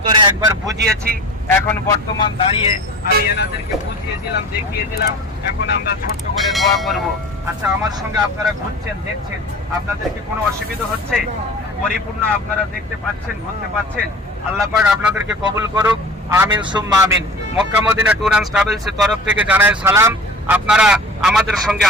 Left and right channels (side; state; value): both; normal; correlation 0.39